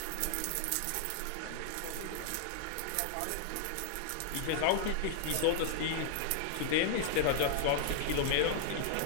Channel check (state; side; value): different; both; correlation -0.01